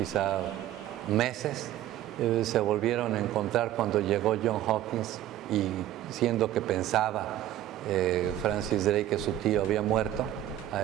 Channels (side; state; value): left; quieter; 13.1 dB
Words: meses, se volvieron a encontrar cuando llegó John Hawkins, y siendo que pensaba Francis Drake que su tío había muerto